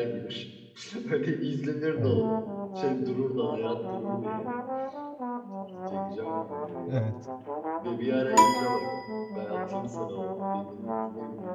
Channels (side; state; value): both; identical; correlation 1.00